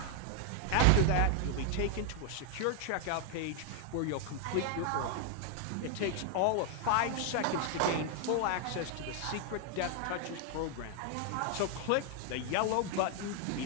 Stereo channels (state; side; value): different; both; correlation 0.00